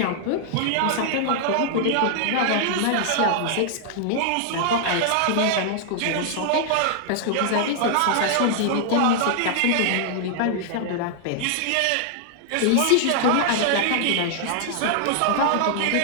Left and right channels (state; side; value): different; both; correlation 0.00